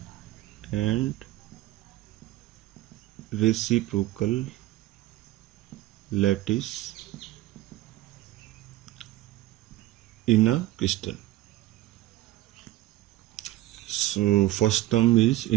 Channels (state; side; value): quieter; left; 16.1 dB